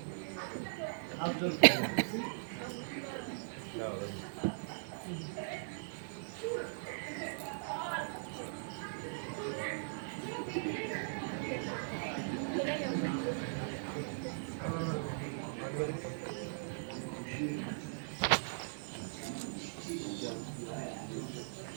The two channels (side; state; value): left; silent; digital silence